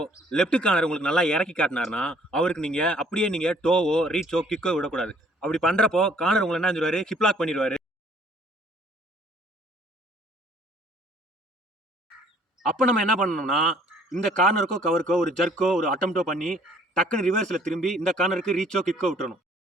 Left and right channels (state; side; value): normal; both; correlation 0.59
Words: லெஃப்ட் கார்னர் உங்களுக்கு நல்லா இறக்கி காட்டினார்னா அவருக்கு நீங்கள் அப்படியே நீங்கள் டோவோ ரீச்சோ கிக்கோ விடக்கூடாது. அப்படி பண்ணுறப்போ கார்னர் உங்களை என்ன சொல்லுவார், ஹிப்லாக் பண்ணிடுவார். அப்போ நம்ம என்ன பண்ணணும்னா, இந்த கார்னருக்கோ கவருக்கோ ஒரு ஜர்க்கோ ஒரு அட்டம்ப்டோ பண்ணி டக்குன்னு ரிவர்ஸில் திரும்பி இந்த கார்னருக்கு ரீச்சோ கிக்கோ விட்டுறணும்.